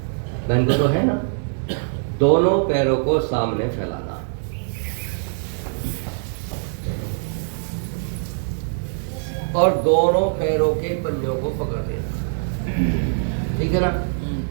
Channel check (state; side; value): silent; left; 64 dB below the other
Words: बहन को तो है ना। दोनों पैरों को सामने फैलाना, और दोनों पैरों के पंजों को पकड़ देना, ठीक है ना।